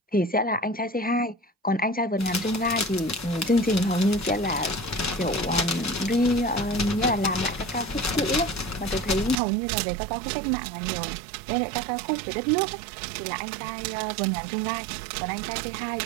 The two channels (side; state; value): left; drops out; at 9.4 s